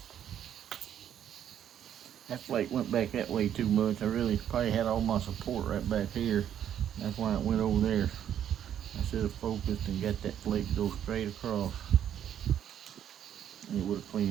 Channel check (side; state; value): left; quieter; 9.9 dB